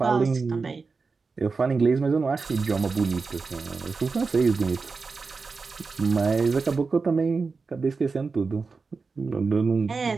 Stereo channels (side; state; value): left; quieter; 4.5 dB